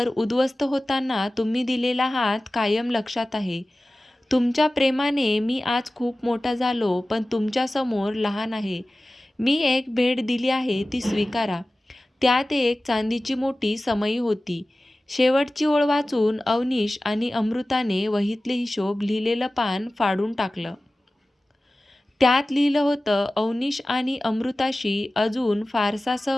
उद्ध्वस्त होताना तुम्ही दिलेला हात कायम लक्षात आहे. तुमच्या प्रेमाने मी आज खूप मोठा झालो, पण तुमच्यासमोर लहान आहे. मी एक भेट दिली आहे ती स्वीकारा. त्यात एक चांदीची मोठी समई होती. शेवटची ओळ वाचून अवनीश आणि अमृताने वहीतले हिशोब लिहिलेलं पान फाडून टाकलं. त्यात लिहिलं होतं, अवनीश आणि अमृताशी अजून फारसा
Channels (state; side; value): normal; both; correlation 0.97